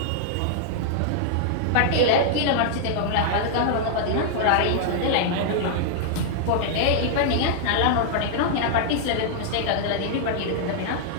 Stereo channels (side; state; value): both; different; correlation -0.01